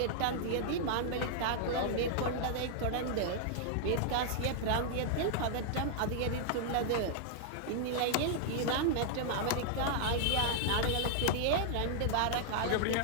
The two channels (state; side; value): different; both; correlation -0.01